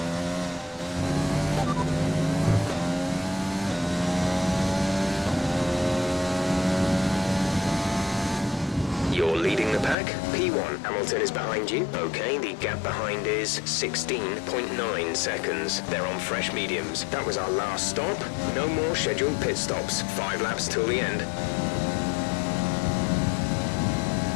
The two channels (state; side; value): drops out; right; at 10.0 s